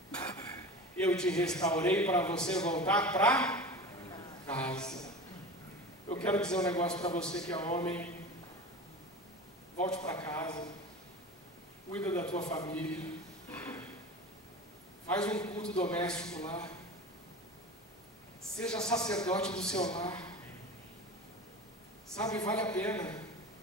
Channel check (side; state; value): both; normal; correlation 0.32